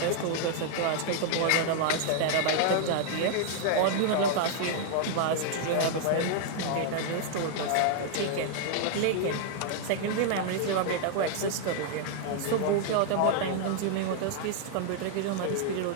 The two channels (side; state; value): both; different; correlation 0.00